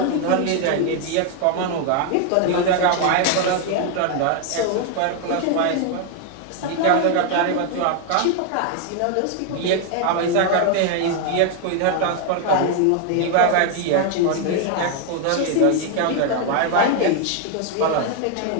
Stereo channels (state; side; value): different; both; correlation 0.00